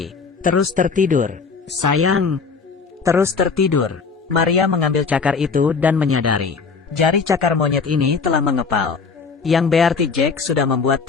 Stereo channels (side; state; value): right; quieter; 5.0 dB